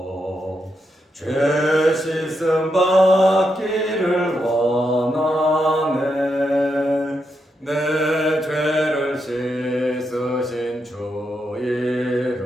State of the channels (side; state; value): both; normal; correlation 0.83